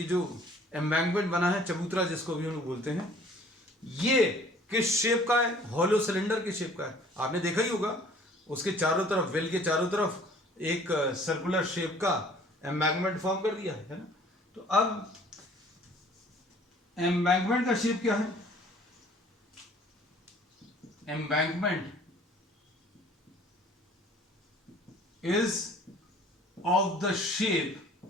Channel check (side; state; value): both; normal; correlation 0.53